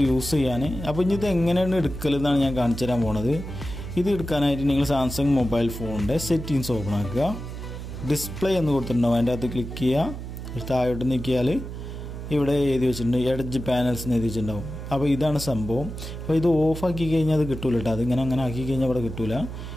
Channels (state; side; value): noise; right; hum, 9 dB below the sound